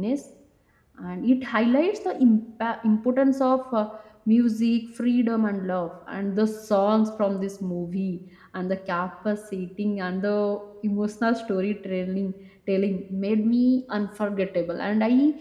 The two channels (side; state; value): both; identical; correlation 1.00